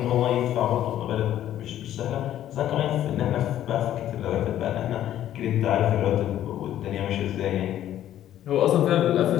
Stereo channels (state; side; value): quieter; right; 11.9 dB